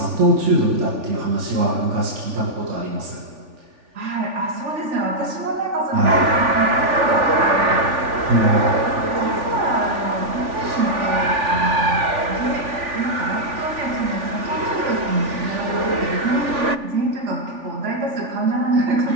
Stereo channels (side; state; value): left; late; 3.4 ms